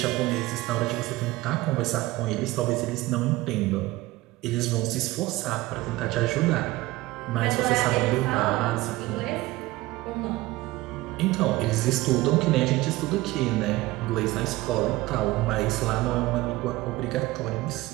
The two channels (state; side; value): quieter; left; 18.9 dB